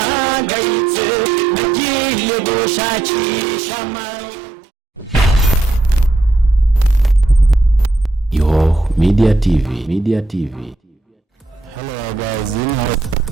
nagiye gushakisha Yo Media TV. Hello guys,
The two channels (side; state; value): left; quieter; 3.1 dB